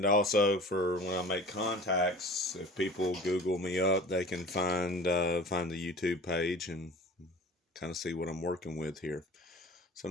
also for when I make contacts, if people Google me up, they can find the YouTube page and kind of see what I'm working with here. So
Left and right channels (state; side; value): normal; both; correlation 0.42